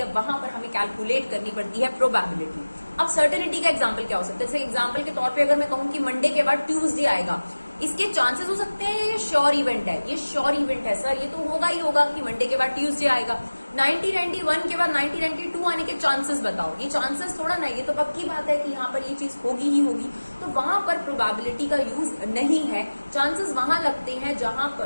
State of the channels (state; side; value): inverted; both; correlation -1.00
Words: वहां पर हमें कैलकुलेट करनी पड़ती है प्रोबेबिलिटी। अब सर्टेनिटी का एग्जांपल क्या हो सकता है? जैसे एग्जांपल के तौर पे अगर मैं कहूं कि मंडे के बाद ट्यूसडे आएगा, इसके चांसेस हो सकते हैं ये श्योर इवेंट है, ये श्योर इवेंट है सर, ये तो होगा ही होगा कि मंडे के बाद ट्यूसडे आएगा। 1991 के बाद 1992 आने के चांसेस बताओ, ये चांसेस थोड़ा ना, ये तो पक्की बात है कि यहाँ पर ये चीज होगी ही होगी। तो वहां पर प्रोबेबिलिटी का यूज नहीं है। चांसेस वहां लगते हैं जहां